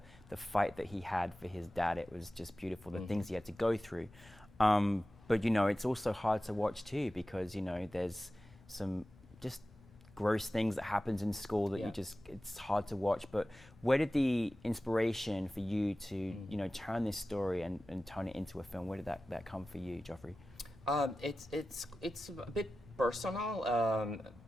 fight that he had for his dad. It was just beautiful, the things he had to go through. But you know, it's also hard to watch too, because you know, there's some just gross things that happens in school that it's hard to watch. But where did the inspiration for you to you know, turn this story and turn it into a film, where did that come for you, Joffre? It's a bit personal.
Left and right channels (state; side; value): normal; both; correlation 0.95